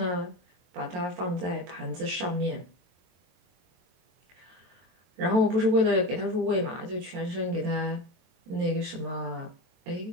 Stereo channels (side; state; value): left; late; 22 ms